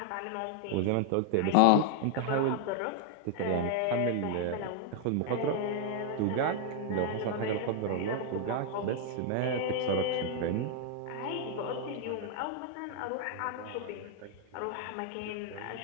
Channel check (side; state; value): both; different; correlation 0.00